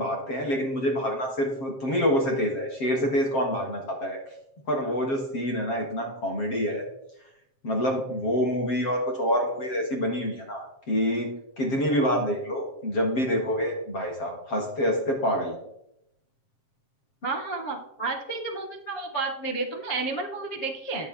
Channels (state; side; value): late; right; 7.5 ms